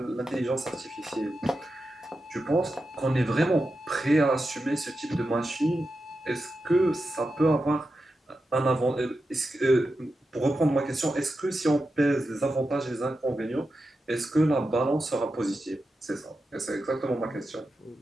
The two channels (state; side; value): normal; both; correlation 0.90